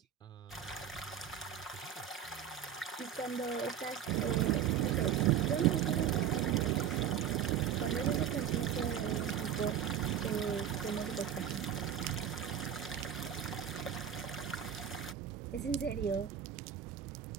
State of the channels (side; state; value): left; quieter; 9.1 dB